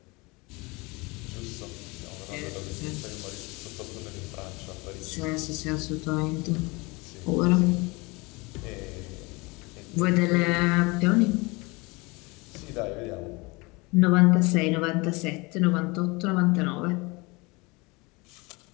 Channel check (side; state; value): right; quieter; 25.8 dB